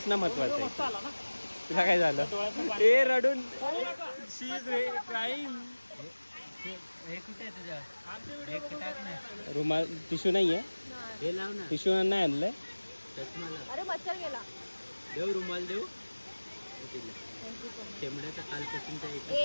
महत्वाचं आहे. तुला काय झालं? ए रडून शी इज क्राईम. हे कुठे आहे तुझ्या? हे टाक ना. रुमाल टिश्यू नाहीये. हे लाव ना. टिश्यू नाही आणलंय. चष्माला अरे मच्छर गेला. देऊ रुमाल देऊ. शेंबड्याचं कालपासूनच्या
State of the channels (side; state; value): both; inverted; correlation -1.00